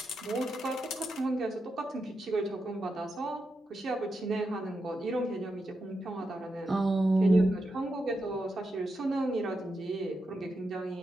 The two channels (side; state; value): both; normal; correlation 0.86